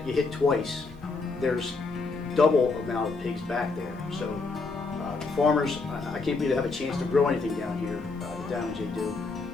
you hit twice, there's double amount of pigs back there. So farmers, I can't believe they have a chance to grow anything down here, the damage they do,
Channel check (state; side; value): quieter; right; 4.0 dB